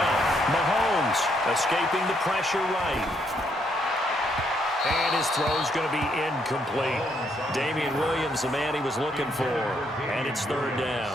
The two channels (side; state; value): both; normal; correlation 0.73